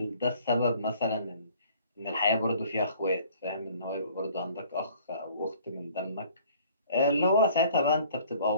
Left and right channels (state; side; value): inverted; both; correlation -0.54